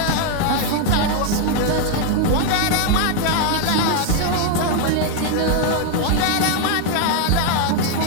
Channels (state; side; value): different; both; correlation 0.00